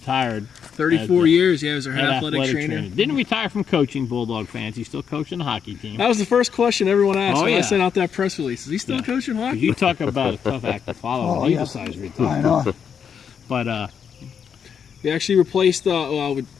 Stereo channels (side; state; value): right; quieter; 7.4 dB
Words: 34 years, yeah, he was our head at athletic trainer. Didn't retire from coaching Bulldog fans. He's still coaching the hockey team. That was the first question everyone asked Oh, when I yeah. sent out that press release. Is he still coaching hockey? You talk about a tough act to follow. Oh, when he yeah. decides to I retire. know. But We actually replaced,